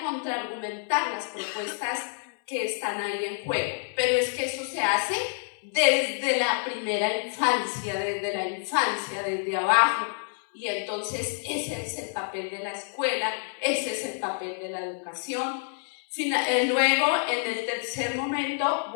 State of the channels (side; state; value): right; silent; 59 dB below the other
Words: contraargumentar las propuestas que están ahí en juego. Pero es que eso se hace desde la primera infancia, desde abajo, y entonces ese es el papel de la escuela, ese es el papel de la educación. Luego, en el tercer momento,